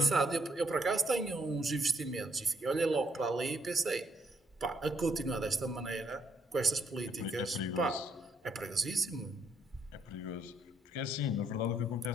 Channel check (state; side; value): normal; both; correlation 0.71